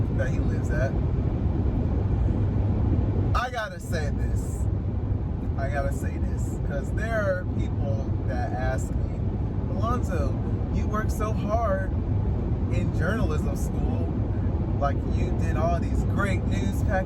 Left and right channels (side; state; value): both; identical; correlation 1.00